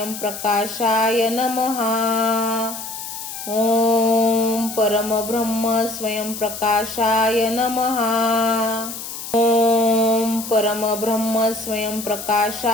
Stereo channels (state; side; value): noise; left; hiss, 9 dB below the sound